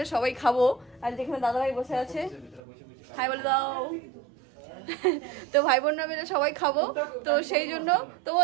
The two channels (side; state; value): left; drops out; at 2.6 s